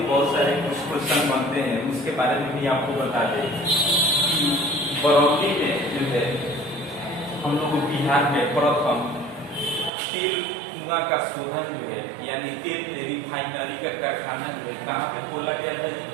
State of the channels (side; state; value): left; drops out; at 9.9 s